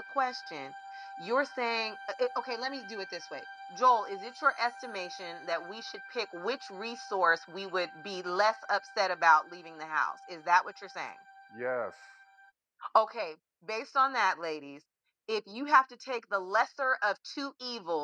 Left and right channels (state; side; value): identical; both; correlation 1.00